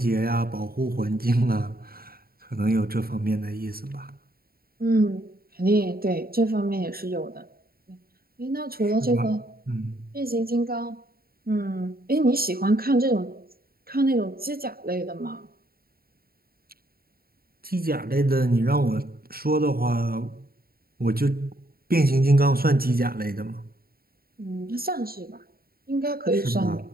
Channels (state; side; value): late; left; 0.44 ms